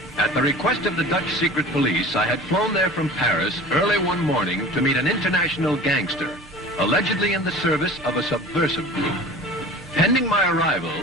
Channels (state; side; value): normal; both; correlation 0.40